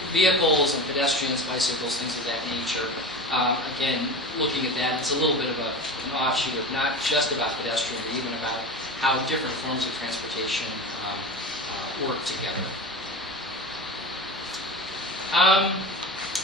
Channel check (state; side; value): normal; both; correlation 0.29